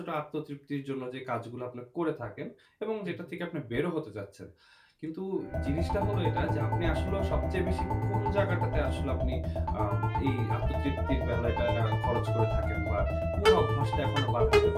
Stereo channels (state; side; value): identical; both; correlation 1.00